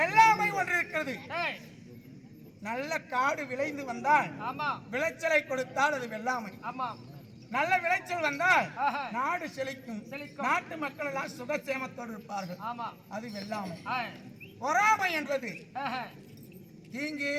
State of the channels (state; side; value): identical; both; correlation 1.00